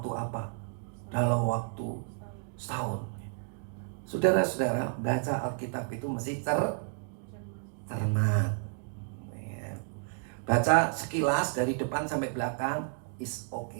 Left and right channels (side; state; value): left; silent; 57 dB below the other